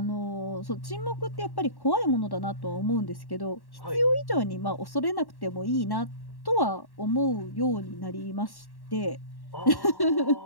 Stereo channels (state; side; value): late; right; 1.1 ms